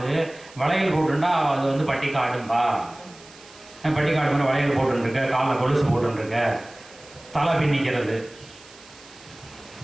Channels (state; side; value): noise; right; hiss, 22 dB below the sound